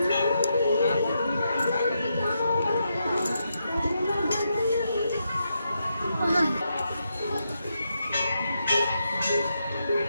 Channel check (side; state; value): both; inverted; correlation -0.83